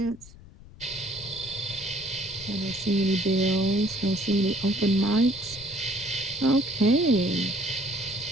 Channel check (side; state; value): left; noise; rumble, 19 dB below the sound